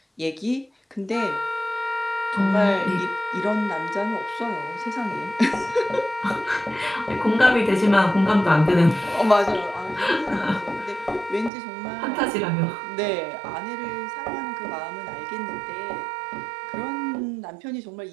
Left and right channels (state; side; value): drops out; left; at 11.5 s